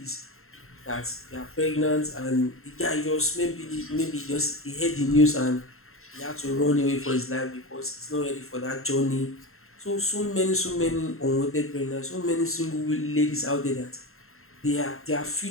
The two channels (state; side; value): late; right; 0.62 ms